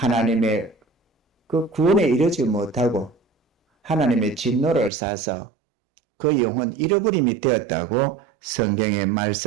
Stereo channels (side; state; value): left; drops out; at 4.9 s